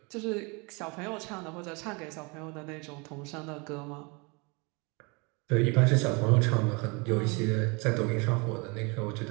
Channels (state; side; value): quieter; left; 29.7 dB